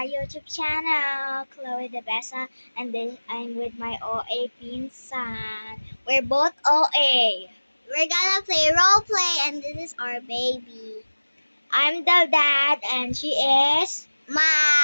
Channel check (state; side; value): inverted; both; correlation -1.00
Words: YouTube channel, Chloe De Besa, and I'm with my OA pinsan. We're both OA. We're gonna play role play, and this is our baby. I'm the dad, and she is